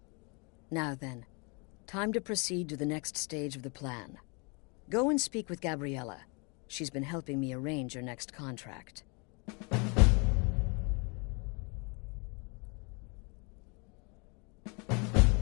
Now then, time to proceed to the next stage of the plan. Go and speak with Gabriella. She's been helping me arrange your next contract.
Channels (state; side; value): quieter; right; 32.4 dB